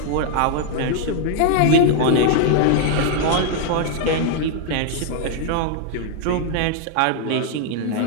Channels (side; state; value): both; different; correlation 0.00